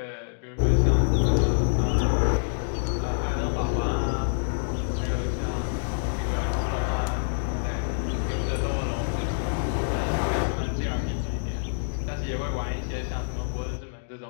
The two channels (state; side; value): silent; right; digital silence